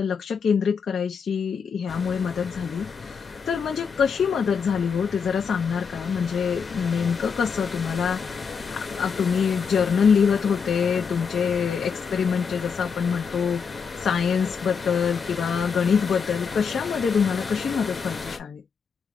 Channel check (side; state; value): right; quieter; 6.2 dB